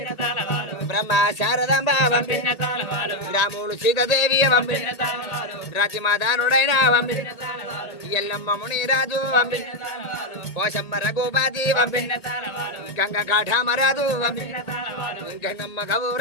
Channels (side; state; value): right; late; 1.8 ms